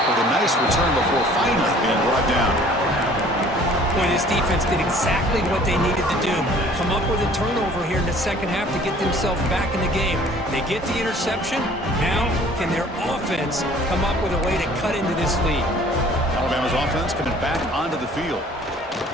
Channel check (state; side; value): normal; both; correlation 0.53